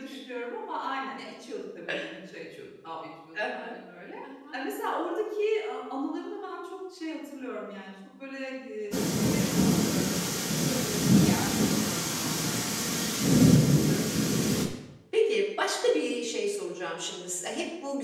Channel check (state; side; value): identical; both; correlation 1.00